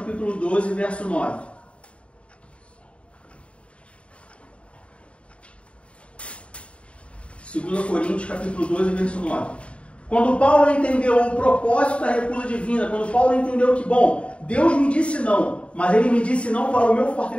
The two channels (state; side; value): late; right; 0.060 ms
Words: 12, verso 9. Segundo Coríntios, capítulo 12, verso 9. Quando Paulo entendeu o propósito da recusa divina, quando Paulo entendeu que, bom, Deus me disse não, mas Ele me disse não para o meu